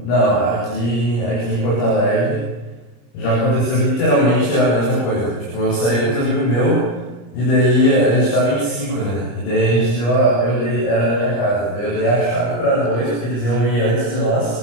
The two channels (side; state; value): right; late; 34 ms